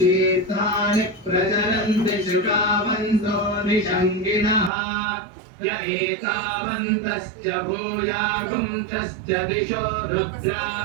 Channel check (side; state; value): left; drops out; at 4.7 s